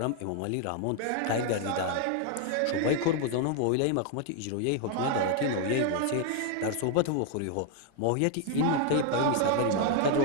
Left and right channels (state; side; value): different; both; correlation 0.00